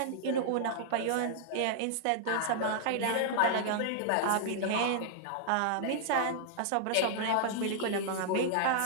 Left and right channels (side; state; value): both; different; correlation -0.01